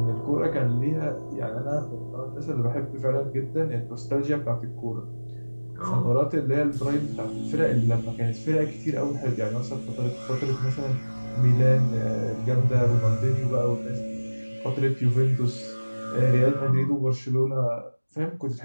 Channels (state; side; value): inverted; both; correlation -1.00